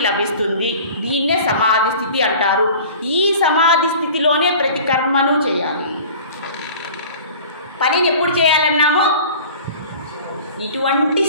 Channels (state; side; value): inverted; both; correlation -0.43